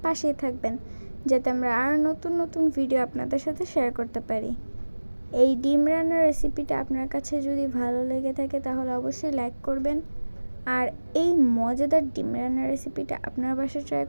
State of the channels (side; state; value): both; inverted; correlation -1.00